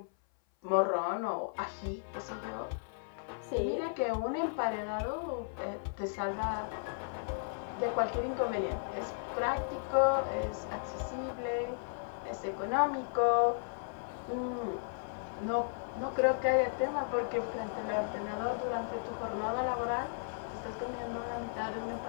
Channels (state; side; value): silent; right; 54 dB below the other